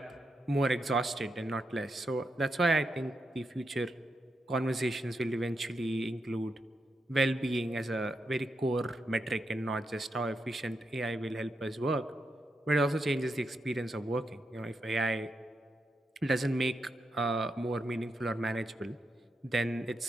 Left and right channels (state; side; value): normal; both; correlation 0.84